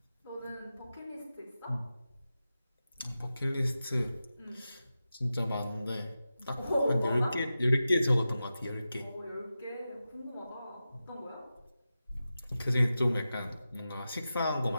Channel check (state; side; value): inverted; both; correlation -0.93